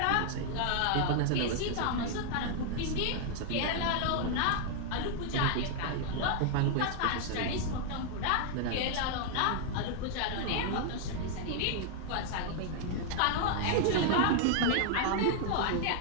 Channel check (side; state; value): both; different; correlation 0.00